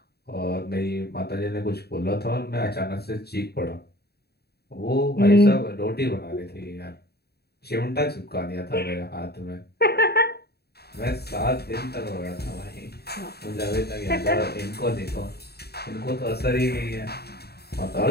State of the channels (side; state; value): right; late; 0.47 ms